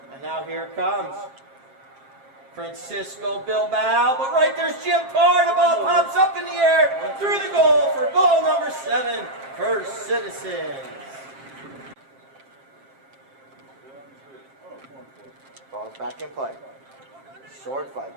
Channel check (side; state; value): left; late; 7.5 ms